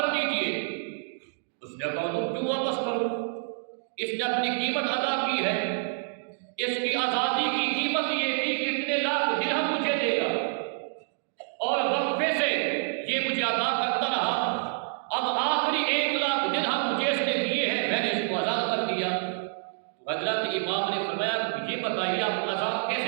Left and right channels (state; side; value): silent; left; digital silence